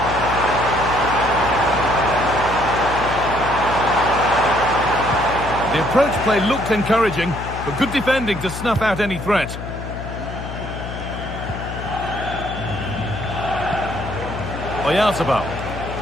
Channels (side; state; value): left; noise; hum, 8 dB below the sound